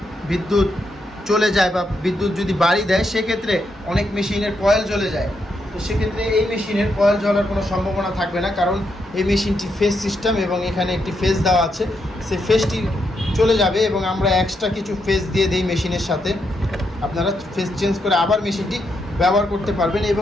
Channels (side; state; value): both; normal; correlation 0.80